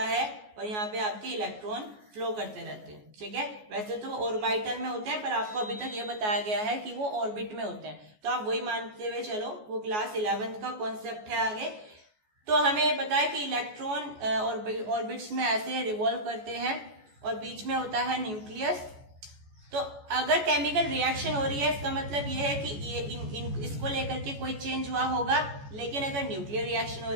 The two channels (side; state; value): left; late; 14 ms